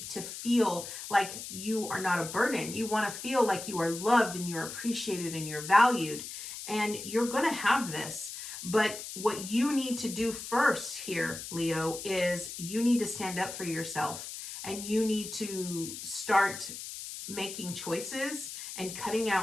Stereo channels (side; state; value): left; noise; hiss, 9 dB below the sound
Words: feel like you are not a burden. You want to feel like you are loved and you're appreciated and you're valued. And you're going to have this. But what you need to do first here, Leo, is you need to stand up for yourself, and you need to start making choices and cutting